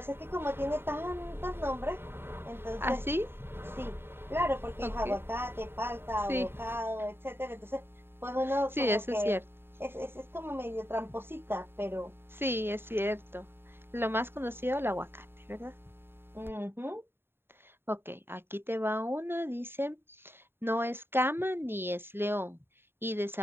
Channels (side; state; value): left; late; 0.11 ms